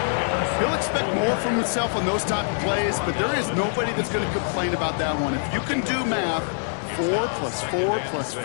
He'll expect more from himself on those type of plays, but there is nobody that's going to complain about that one. If you can do math, 4 plus 4 plus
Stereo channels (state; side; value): silent; right; digital silence